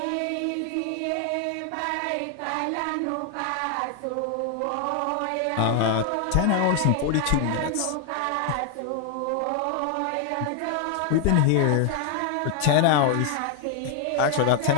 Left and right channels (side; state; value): both; different; correlation 0.00